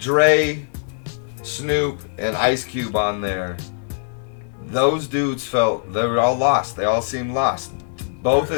Snoop, and Ice Cube on there. Those dudes felt they were all lost. They all seemed lost. Both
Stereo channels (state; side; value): silent; right; 65 dB below the other